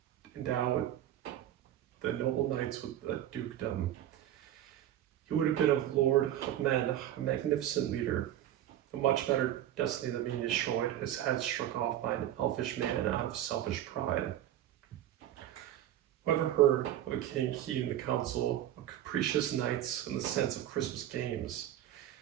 endowed the noble knights with a dukedom. He would have been a lord of men, a magnificent leader. A much better destiny than being destroyed, his head struck off by an elfish man out of selfish pride." Whoever heard of a king heeding the counsel of capricious knights and the sense of Christmas games?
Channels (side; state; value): left; quieter; 12.2 dB